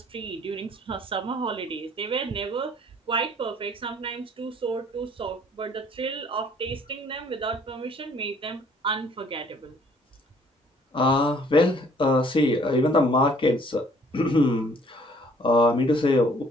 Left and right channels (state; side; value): normal; both; correlation 0.59